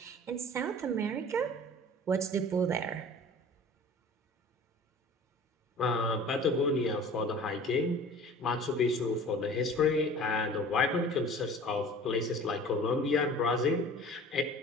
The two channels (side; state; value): both; normal; correlation 0.43